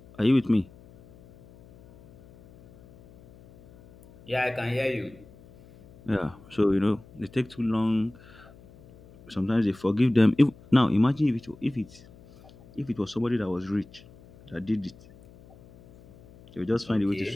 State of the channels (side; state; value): left; noise; hum, 24 dB below the sound